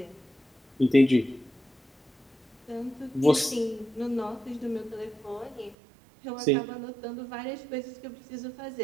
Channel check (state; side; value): drops out; left; at 5.8 s